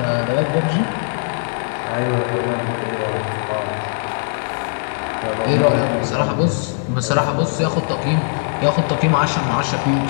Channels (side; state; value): right; silent; digital silence